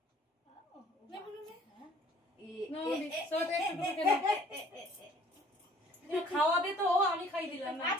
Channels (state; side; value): normal; both; correlation 0.54